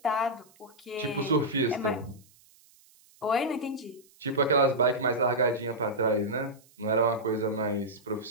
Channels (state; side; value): noise; right; hiss, 29 dB below the sound